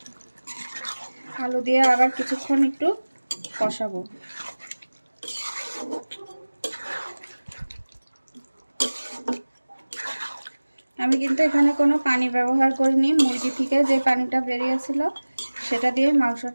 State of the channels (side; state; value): both; inverted; correlation -1.00